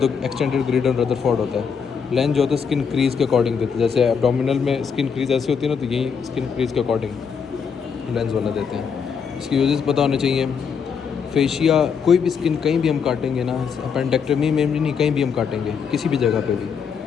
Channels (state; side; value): quieter; right; 6.5 dB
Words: एक्सटेंडेड ग्रिडन रदरफोर्ड होता है। लेंस जो होता है स्किन क्रीज के अकॉर्डिंग देते हैं, जैसे एब्डोमिनल में स्किन क्रीज ऐसी होती है ना, तो यही स्किन क्रीज के अकॉर्डिंग लेंस वाला देते हैं। इसकी यूजेस पता होने चाहिए। फेशिया, कोई भी स्किन कहीं भी हम काटेंगे ना, अपेंडेक्टमी में भी नहीं, कहीं भी हम काटेंगे किसी भी जगह पे भी,